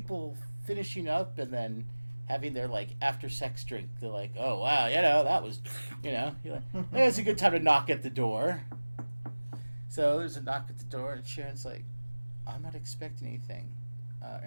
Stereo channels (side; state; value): both; inverted; correlation -1.00